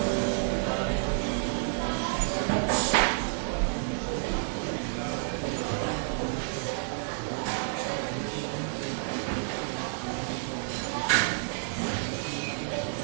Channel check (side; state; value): left; silent; digital silence